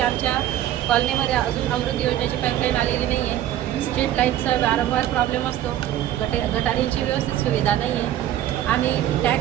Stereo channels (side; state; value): left; quieter; 12.3 dB